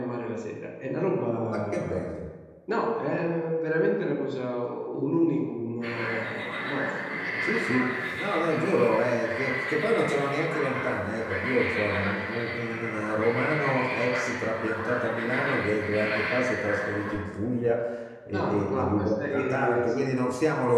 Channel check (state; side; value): identical; both; correlation 1.00